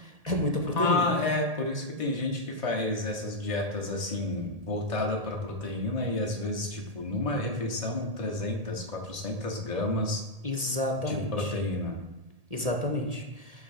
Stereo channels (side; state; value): left; late; 1.8 ms